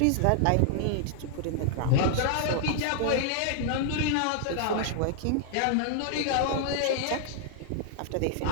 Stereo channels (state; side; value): different; both; correlation 0.00